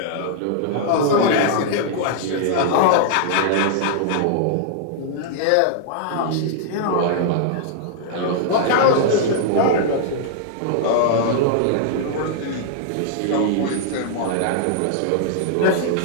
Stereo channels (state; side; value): different; both; correlation -0.01